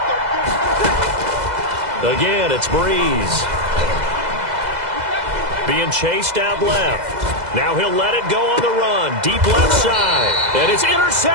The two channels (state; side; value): late; left; 2.0 ms